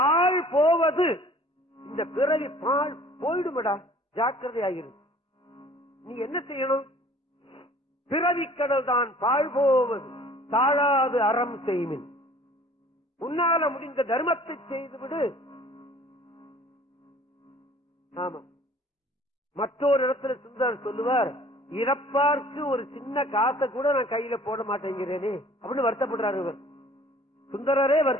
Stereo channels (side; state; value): both; normal; correlation 0.51